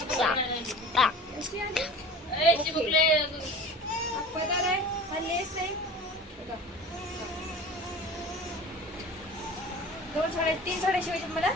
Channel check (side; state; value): both; normal; correlation 0.38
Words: अशी आली. चिमुकले पदर आहे, हा लेस आहे. बघा. 2 साड्या 3 साड्या शिवायच्या मला.